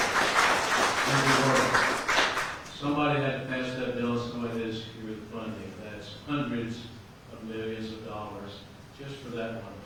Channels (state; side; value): identical; both; correlation 1.00